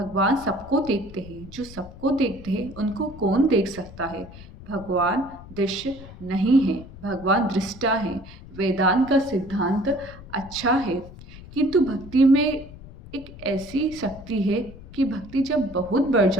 सबको देखते हैं। जो सबको देखते हैं उनको कौन देख सकता है? भगवान दृश्य नहीं है, भगवान दृष्टा है। वेदांत का सिद्धांत अच्छा है, किंतु भक्ति में एक ऐसी शक्ति है कि भक्ति जब बहुत बढ़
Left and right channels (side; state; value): left; noise; rumble, 17 dB below the sound